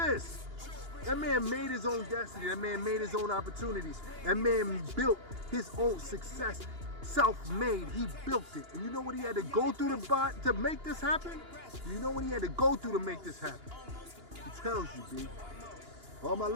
That man made his own destiny. That man made his own opportunities. That man built his own success. Self-made, he built it. And you know what he had to go through to make this happen? You know what he had to go through to make this happen? He tells you, B. All my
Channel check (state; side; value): late; left; 2.9 ms